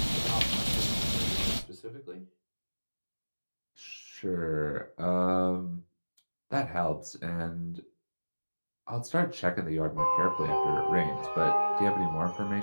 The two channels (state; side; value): inverted; both; correlation -1.00